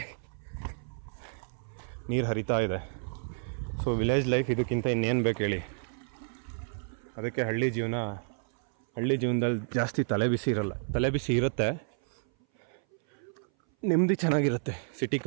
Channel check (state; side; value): silent; left; 57 dB below the other